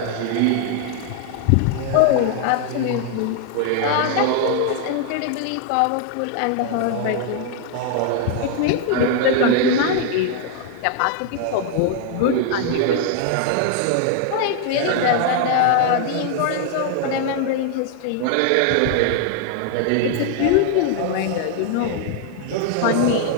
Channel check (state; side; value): different; both; correlation 0.00